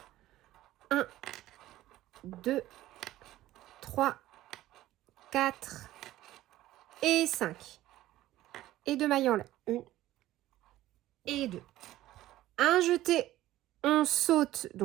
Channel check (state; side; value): quieter; left; 15.0 dB